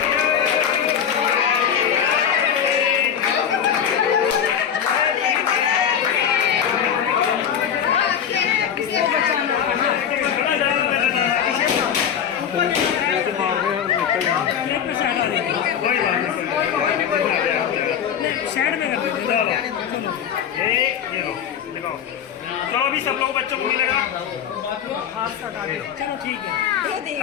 चलो अभी सब लोग बच्चों को मिलेगा। चलो ठीक है,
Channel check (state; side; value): quieter; right; 8.5 dB